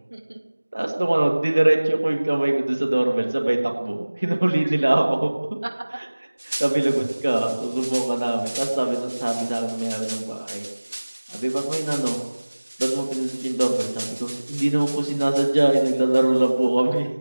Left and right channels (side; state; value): both; inverted; correlation -1.00